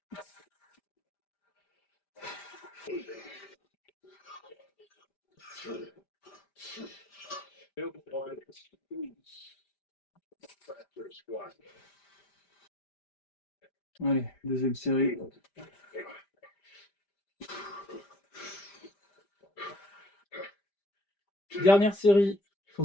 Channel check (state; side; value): late; right; 5.0 ms